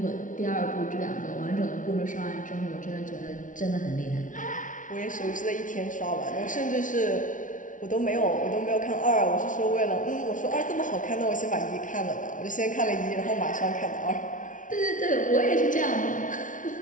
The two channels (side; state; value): right; late; 0.38 ms